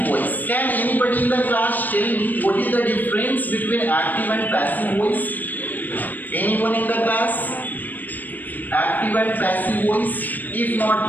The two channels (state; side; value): late; right; 0.086 ms